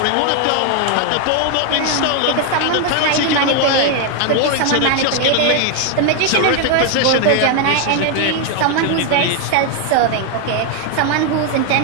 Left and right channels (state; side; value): different; both; correlation 0.01